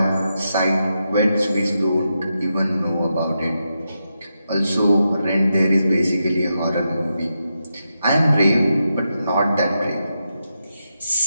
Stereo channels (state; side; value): inverted; both; correlation -0.86